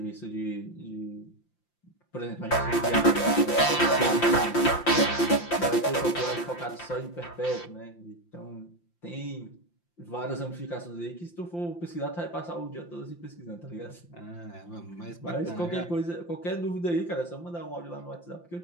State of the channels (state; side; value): late; right; 5.8 ms